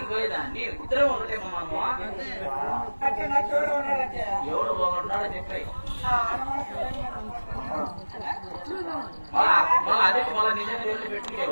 నీ ఇద్దరే ఉండటేమో మనము. ఎవడు బాగుంటాడో చెప్పాయి. అదే మళ్ళీ నిజంగా వెళ్ళి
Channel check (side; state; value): both; inverted; correlation -1.00